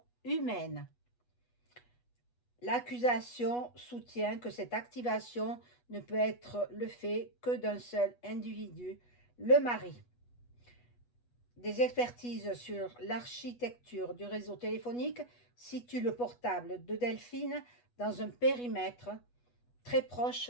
humaine. L'accusation soutient que cette activation ne peut être le fait que d'un seul individu, le mari. Des expertises sur l'architecture du réseau téléphonique situent le portable de Delphine dans un périmètre très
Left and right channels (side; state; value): right; late; 8.2 ms